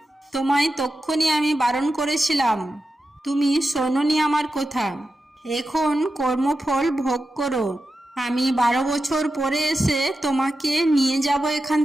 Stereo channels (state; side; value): normal; both; correlation 0.90